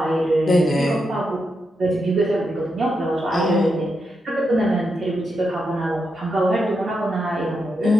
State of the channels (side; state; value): both; normal; correlation 0.84